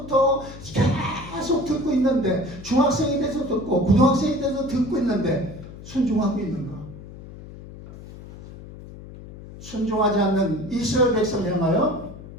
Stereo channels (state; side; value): noise; left; hum, 15 dB below the sound